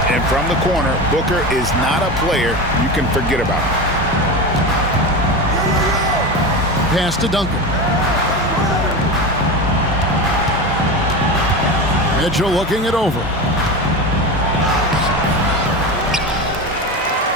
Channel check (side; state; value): both; normal; correlation 0.24